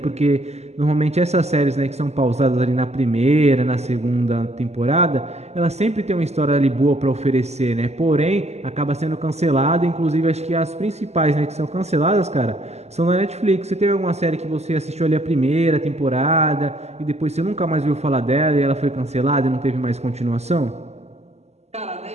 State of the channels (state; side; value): late; left; 0.32 ms